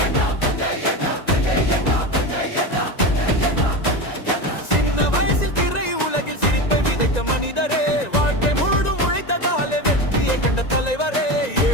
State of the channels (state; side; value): late; right; 1.9 ms